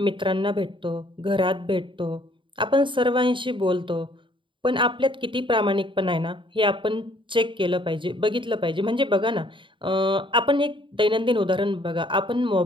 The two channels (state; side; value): late; left; 0.24 ms